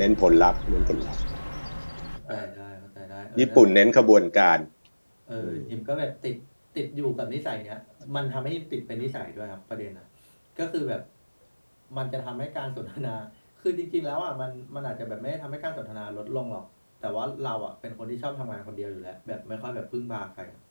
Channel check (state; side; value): inverted; both; correlation -1.00